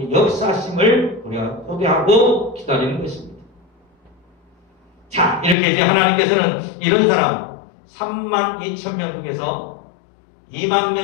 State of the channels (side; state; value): right; drops out; at 5.6 s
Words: 역사심을 우리가 고대하고 기다리는 것입니다. 자, 이렇게 이제 하나님께서는 이런 사람 32,000명 중에서 2만